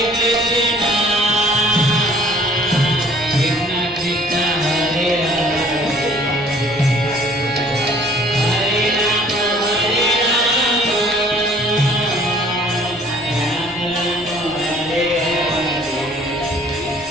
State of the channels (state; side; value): normal; both; correlation 0.55